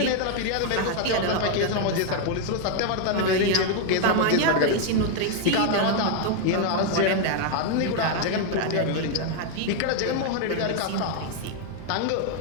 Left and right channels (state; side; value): different; both; correlation 0.00